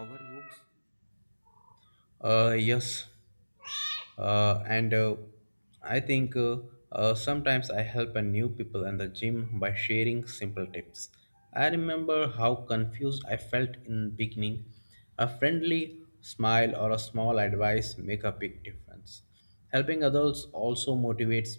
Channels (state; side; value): inverted; both; correlation -1.00